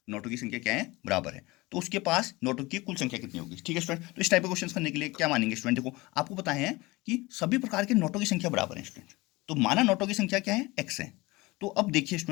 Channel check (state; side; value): quieter; right; 22.0 dB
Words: नोटों की संख्या क्या है, बराबर है, तो उसके पास नोटों की कुल संख्या कितनी होगी, ठीक है स्टूडेंट। तो इस टाइप के क्वेश्चन करने के लिए क्या मानेंगे स्टूडेंट, देखो आपको पता है कि सभी प्रकार के नोटों की संख्या बराबर है स्टूडेंट, तो माना नोटों की संख्या क्या है x है। तो अब देखिए